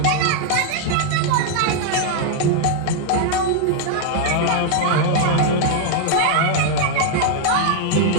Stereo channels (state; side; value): different; both; correlation 0.00